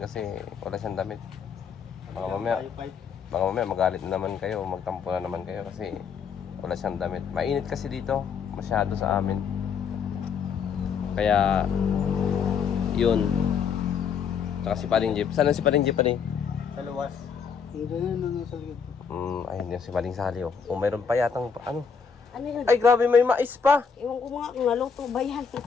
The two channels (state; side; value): quieter; right; 6.5 dB